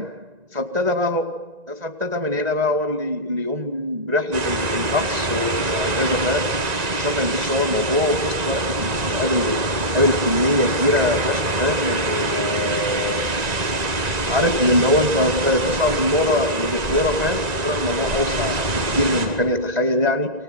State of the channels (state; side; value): late; left; 1.9 ms